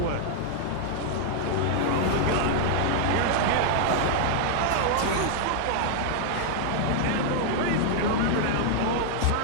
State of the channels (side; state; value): both; different; correlation -0.01